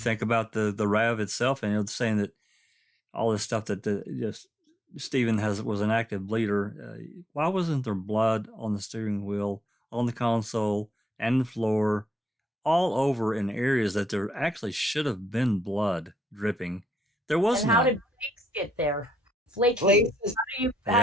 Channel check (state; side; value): normal; both; correlation 0.78